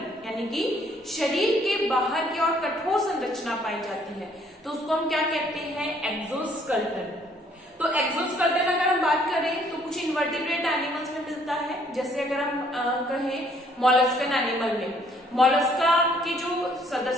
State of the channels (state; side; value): normal; both; correlation 0.64